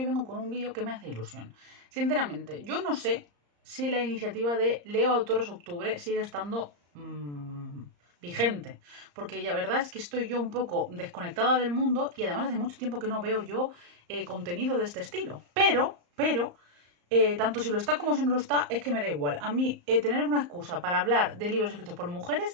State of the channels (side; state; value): left; late; 34 ms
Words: vengo con un vídeo que me hace ilusión. Sinceramente, yo no sé si la iniciativa de Leo Autores Octubre sigue estando vigente, porque la verdad es que estoy yo un poco desconectada del mundo y además hace mucho tiempo que no veo yo contenido de este estilo. Pero tanto si lo está como si no lo está, es que me da igual. A mí, tener una excusa para hablar de libros escritos por